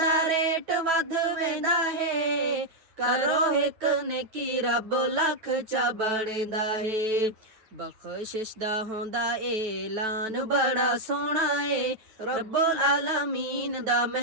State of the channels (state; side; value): late; left; 9.3 ms